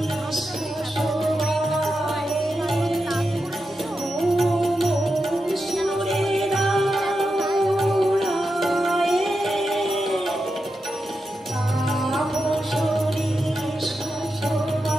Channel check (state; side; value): normal; both; correlation 0.89